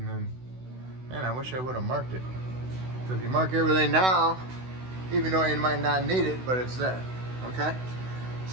then, man, I wish I would have marked it. So if you mark everything now, even though you might not need it, but it's there, okay?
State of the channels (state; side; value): late; left; 16 ms